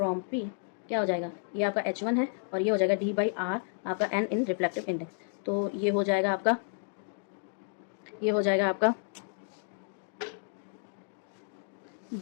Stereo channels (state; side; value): silent; right; digital silence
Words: P क्या हो जाएगा, ये आपका H1 है, और ये हो जाएगा D/R आपका N इन रिफ्लेक्टिव इंडेक्स. तो ये हो जाएगा आपका